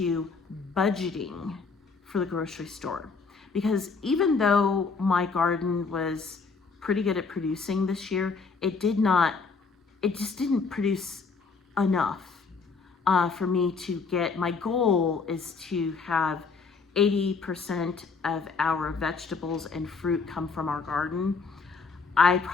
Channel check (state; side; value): quieter; right; 4.7 dB